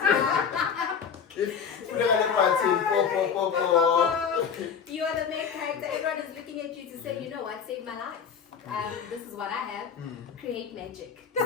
You are the main character. Everyone is looking at you to say, you know what, save my life. This is what I have. Create magic.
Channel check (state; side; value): quieter; right; 6.9 dB